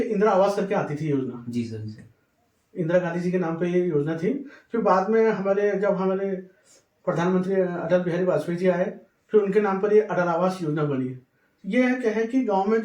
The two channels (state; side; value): identical; both; correlation 1.00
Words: आवास करके आती थी योजना, जी सर, जी सर। इंदिरा गांधी जी के नाम पे ये योजना थी। फिर बाद में जब हमारे प्रधानमंत्री अटल बिहारी वाजपेयी जी आए, फिर उनके नाम पर ये अटल आवास योजना बनी। ये क्या है कि गांव में